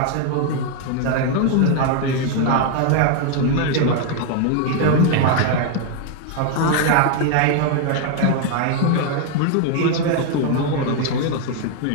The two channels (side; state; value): both; different; correlation 0.00